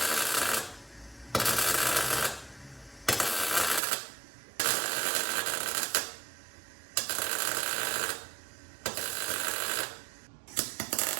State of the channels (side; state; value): left; drops out; at 3.8 s